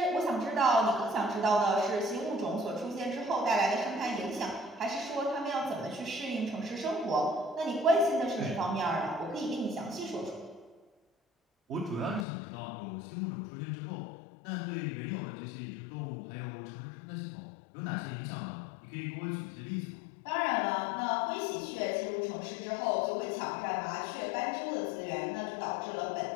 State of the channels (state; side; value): drops out; right; at 12.2 s